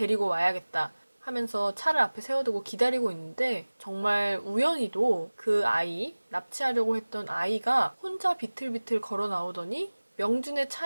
와야겠다 하면서 차를 앞에 세워두고 기다리고 있는데 정말 우연히도 그 아이, 납치하려고 했던 아이가 혼자 비틀비틀 걸어 나오더니 명준의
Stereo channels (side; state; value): both; inverted; correlation -1.00